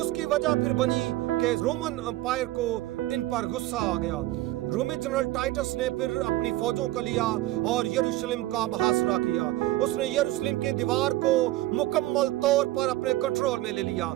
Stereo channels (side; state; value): left; quieter; 16.7 dB